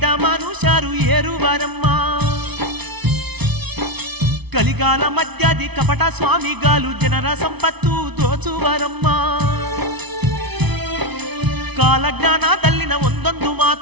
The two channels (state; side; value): late; left; 0.99 ms